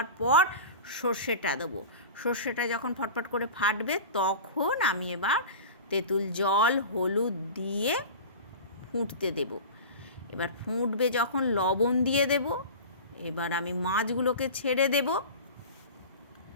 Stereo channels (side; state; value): both; inverted; correlation -0.33